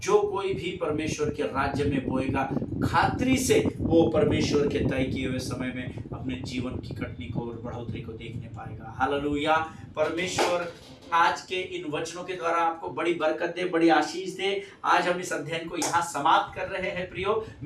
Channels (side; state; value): both; identical; correlation 1.00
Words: जो कोई भी परमेश्वर के राज्य में बोएगा, खातरी से वो परमेश्वर के तय किए हुए समय में अपने जीवन की कटनी को और बढ़ोतरी को देखने पाएगा। हालेलुया। परमेश्वर आज के इन वचनों के द्वारा आपको बड़ी बरकत दे, बड़ी आशीष दे। आज हम इस अध्ययन को यहाँ समाप्त कर रहे हैं। प्रियो,